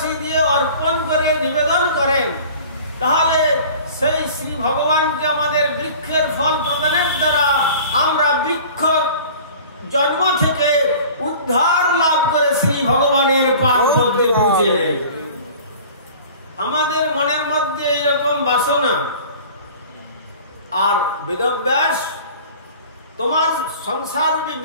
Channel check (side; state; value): both; inverted; correlation -0.44